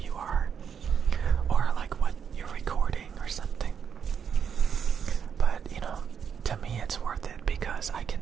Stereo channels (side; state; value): left; quieter; 7.4 dB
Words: are or like what you're recording or something. But, you know, to me it's worth it because I can